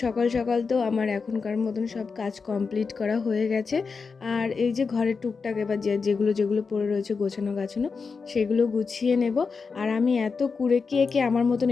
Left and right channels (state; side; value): quieter; right; 5.0 dB